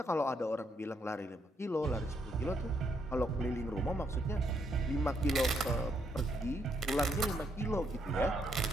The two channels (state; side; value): normal; both; correlation 0.75